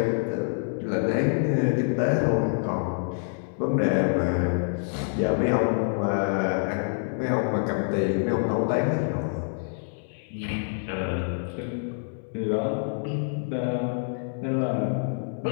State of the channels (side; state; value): right; silent; 60 dB below the other